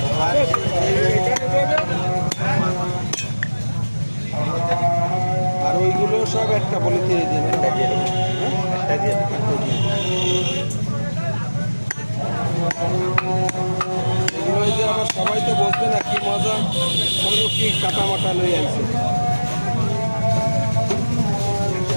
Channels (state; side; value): inverted; both; correlation -1.00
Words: আর ওইগুলো সব একটা পলিথিনে দিন। একটা দিয়ে দেবো, একটা দিয়ে দেবো। এগুলো যে আবার সবাই তো বসবে না, কি মজা হলো, কি কাটা মাটা লই আনছে।